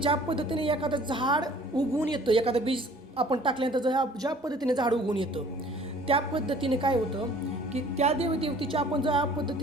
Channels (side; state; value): both; normal; correlation 0.52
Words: पद्धतीने एखादं झाड उगवून येतं, एखादं बीज आपण टाकल्यानंतर ज्या पद्धतीने झाड उगवून येतं त्या पद्धतीने काय होतं की त्या देवतेची आपण ज्या